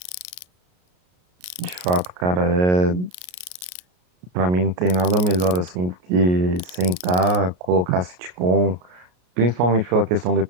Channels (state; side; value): late; left; 33 ms